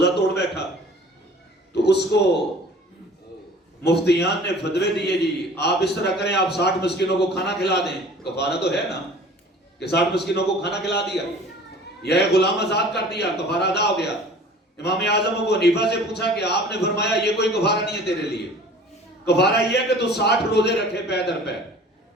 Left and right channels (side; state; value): both; normal; correlation 0.46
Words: توڑ بیٹھا تو اس کو مفتیان نے فتوے دیے جی آپ اس طرح کریں، آپ 60 مسکینوں کو کھانا کھلا دیں. کفارہ تو ہے نا کہ 60 مسکینوں کو کھانا کھلا دیا یا ایک غلام آزاد کر دیا، کفارہ ادا ہو گیا. امام اعظم ابو حنیفہ سے پوچھا کہ آپ نے فرمایا یہ کوئی کفارہ نہیں ہے تیرے لیے، کفارہ یہ ہے کہ تو 60 روزے رکھے پے در پے،